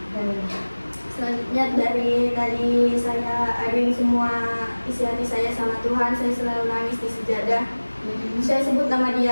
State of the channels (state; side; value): inverted; both; correlation -1.00